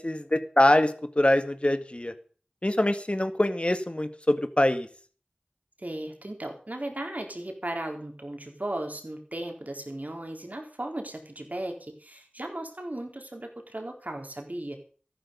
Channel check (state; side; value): normal; both; correlation 0.95